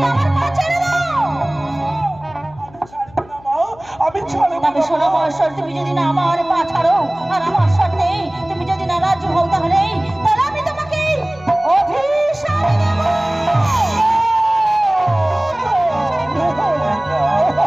আমার পা ছেড়ে দাও। আমি ছাড়বো না। তবে শোনো মাস্টার, তুমি যদি না আমার পা ছাড়ো আর আমার সাথে তুমি যদি না রাজি হও, তাহলে আমি তোমাকে অভিশাপ দেব।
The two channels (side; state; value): left; noise; hum, 24 dB below the sound